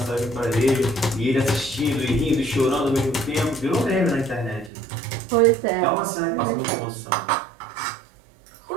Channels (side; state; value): left; drops out; at 4.7 s